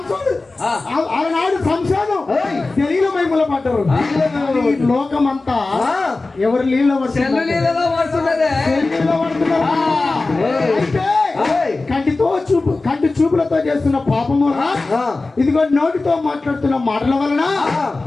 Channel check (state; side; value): quieter; right; 3.4 dB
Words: సంసారం తెలియని మైముల పడ్డారు. లోకమంతా ఎవరు నీళ్ళ పడుతున్నారు. కంటి చూపులతో చేస్తున్న పాపము వలన, ఆ. ఇదిగో నోటితో మాట్లాడుతున్న మాటల వలన,